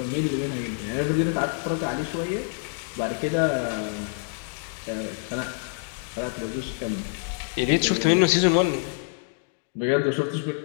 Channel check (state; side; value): silent; right; 61 dB below the other